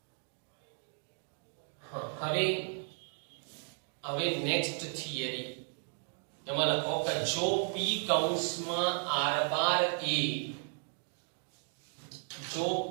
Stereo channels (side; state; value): left; silent; 55 dB below the other